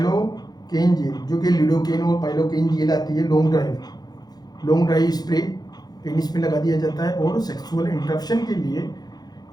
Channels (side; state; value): right; late; 0.19 ms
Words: जेल जो कि लिडोकेन और पाइलोकेन जेल आती है, लॉन्ग ड्राइव स्प्रे पेनिस में लगा दिया जाता है और सेक्सुअल इंटरप्शन के लिए